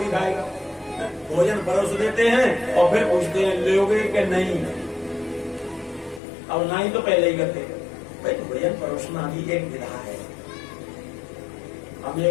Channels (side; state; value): right; drops out; at 6.2 s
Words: खाएगा। भोजन परोस देते हैं और फिर पूछते हैं लोगे कि नहीं, और ना ही तो पहले ही करते। भाई भोजन परोसना भी एक विधा है। हम